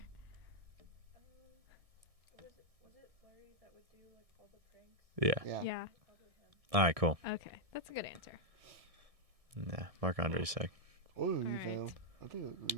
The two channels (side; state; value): left; late; 1.6 ms